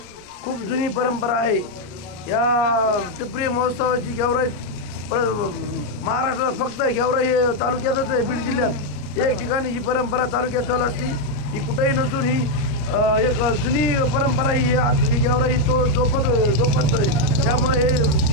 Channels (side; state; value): right; late; 33 ms